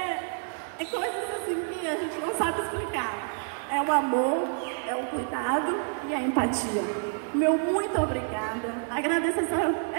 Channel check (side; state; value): left; silent; 59 dB below the other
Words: coisas assim que a gente não sabe explicar. É o amor, é o cuidado e a empatia. Meu muito obrigada. Agradeço